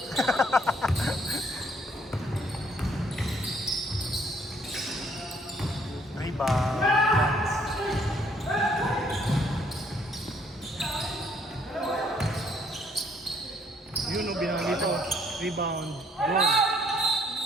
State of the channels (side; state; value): both; normal; correlation 0.65